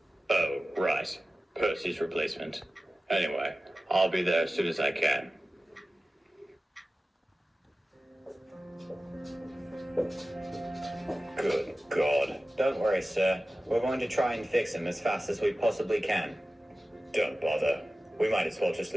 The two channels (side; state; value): both; normal; correlation 0.95